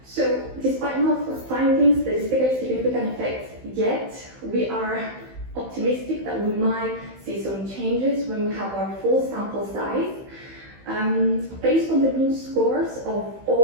So despite not finding statistically significant effects yet, we are optimistic that we might see some changes when we have our full sample size. Based on the mean scores of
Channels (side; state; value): left; late; 15 ms